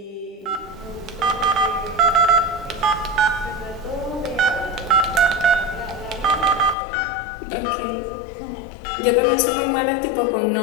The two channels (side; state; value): right; drops out; at 6.8 s